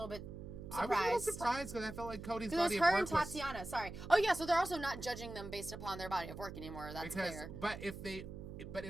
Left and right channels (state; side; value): noise; right; hum, 10 dB below the sound